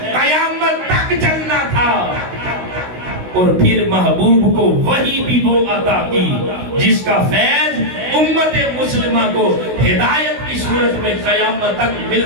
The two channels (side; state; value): left; late; 16 ms